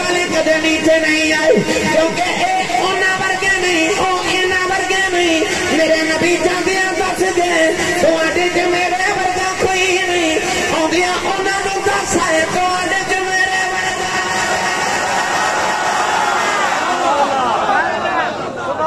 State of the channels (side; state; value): both; identical; correlation 1.00